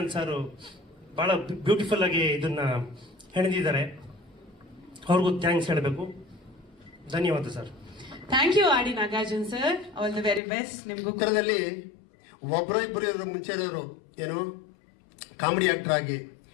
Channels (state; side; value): drops out; right; at 10.4 s